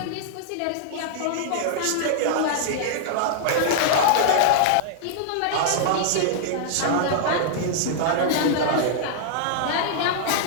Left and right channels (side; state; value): both; different; correlation -0.01